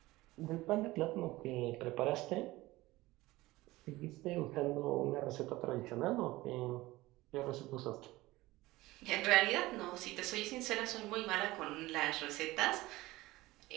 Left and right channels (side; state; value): left; quieter; 18.9 dB